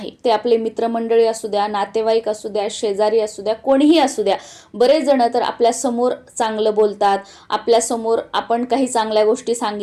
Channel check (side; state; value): both; identical; correlation 1.00